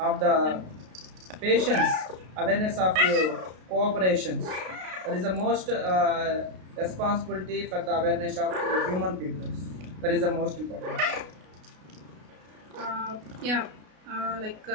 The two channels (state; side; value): late; left; 33 ms